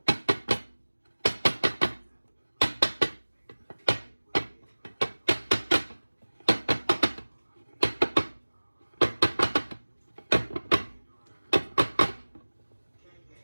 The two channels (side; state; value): both; inverted; correlation -1.00